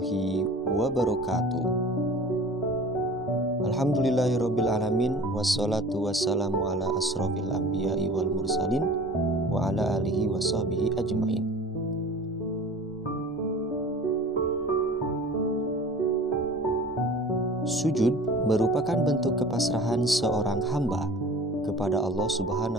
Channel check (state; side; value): normal; both; correlation 0.42